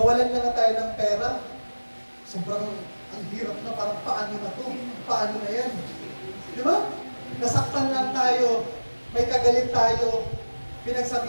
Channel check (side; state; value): both; inverted; correlation -1.00